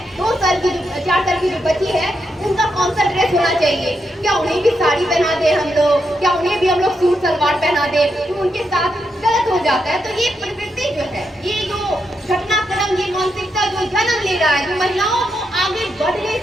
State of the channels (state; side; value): normal; both; correlation 0.83